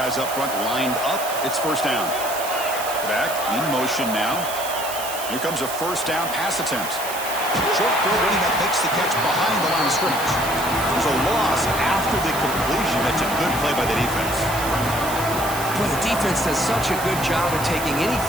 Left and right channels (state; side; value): noise; right; hiss, 8 dB below the sound